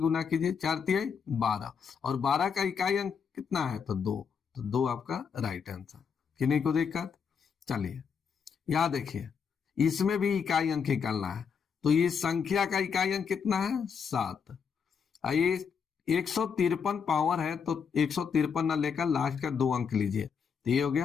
कीजिए, 4 तिहाई 12, और 12 का इकाई अंक कितना है? तो 2। तो 2 आपका राइट आंसर। किन्हीं को दिक्कत? चलिए, यहां देखिए, इसमें भी इकाई अंक निकालना है, तो ये संख्या का इकाई अंक कितना है? 7। ये 153 पावर है, तो 153 ना लेकर लास्ट का 2 अंक लीजिए, तो ये हो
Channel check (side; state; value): right; quieter; 6.5 dB